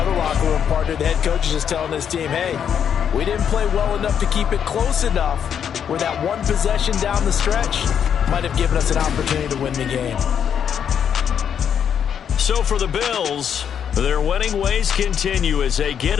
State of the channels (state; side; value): quieter; right; 8.2 dB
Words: locker room, partner, the head coach is just telling this team, hey, we didn't play well enough to keep it close enough where that one possession down the stretch might have given us an opportunity to win the game. So for the Bills, their winning ways continue as they get